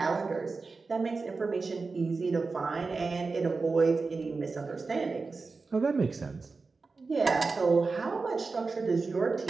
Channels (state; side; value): quieter; left; 4.2 dB